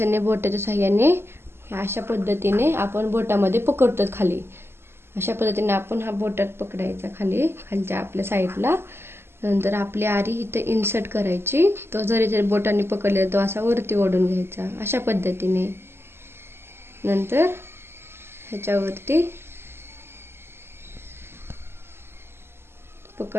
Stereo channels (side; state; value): left; late; 0.12 ms